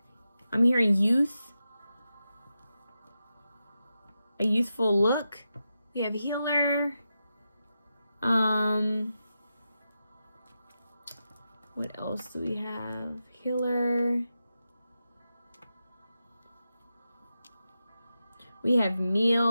I'm hearing youth. A youthful look. We have healer. What else do we have? Healer. We have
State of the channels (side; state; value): both; inverted; correlation -0.90